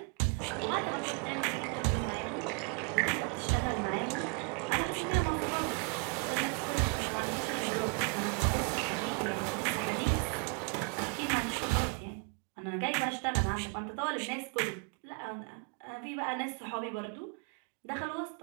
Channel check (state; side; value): quieter; left; 32.9 dB